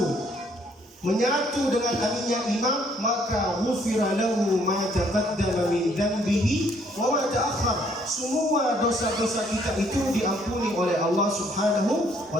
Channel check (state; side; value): normal; both; correlation 0.65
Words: menyatu dengan aminnya imam, maka ghufira lahu ma taqaddama min dhanbihi wa ma ta'akhkhar. Semua dosa-dosa kita itu diampuni oleh Allah Subhanahu